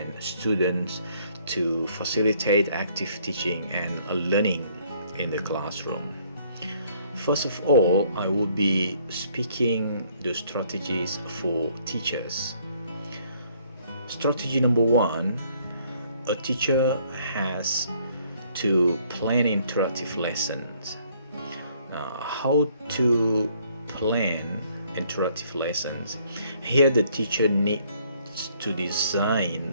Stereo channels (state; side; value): inverted; both; correlation -0.64